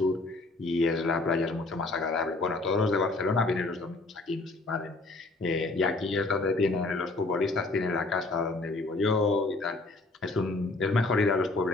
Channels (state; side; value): quieter; right; 3.2 dB